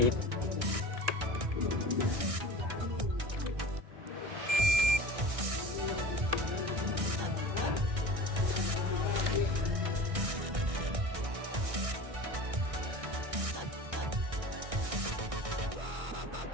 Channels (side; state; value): left; late; 1.6 ms